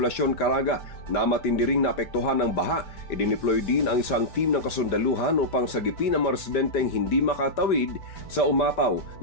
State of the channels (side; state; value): right; late; 5.0 ms